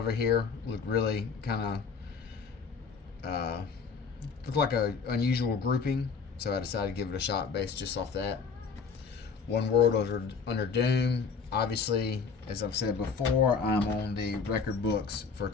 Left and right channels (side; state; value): right; quieter; 5.5 dB